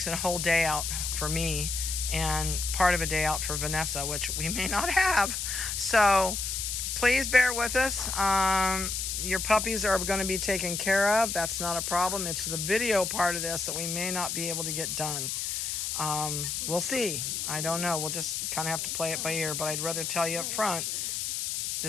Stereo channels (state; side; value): noise; left; hiss, 2 dB below the sound